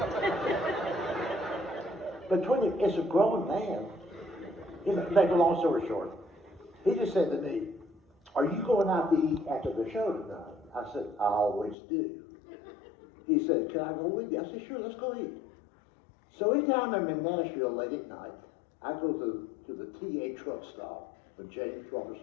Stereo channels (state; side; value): drops out; right; at 11.8 s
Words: But 20 is a grown man. You know, make a long story short, he just said to me, "Are you going out to eat after the show tonight?" I said, "I always do." He said, "Can I go with you?" I said, "Sure, let's go eat." So anytime I'm in Nashville late at night, I go to the TA truck stop on James